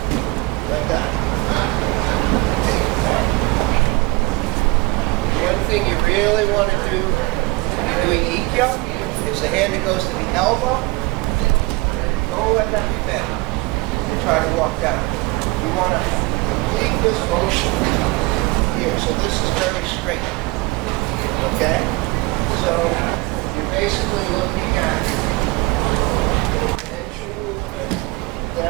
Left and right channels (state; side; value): quieter; left; 24.0 dB